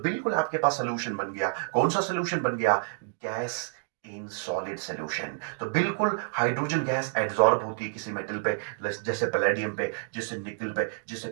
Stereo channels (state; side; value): silent; left; digital silence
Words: आपके पास सोल्यूशन बन गया। कौन सा सोल्यूशन बन गया? Gas in solid solution. तो बिल्कुल हाइड्रोजन गैस एड्सॉर्ब होती है किसी मेटल पे, जैसे पैलेडियम पे, जैसे निकल पे, जैसे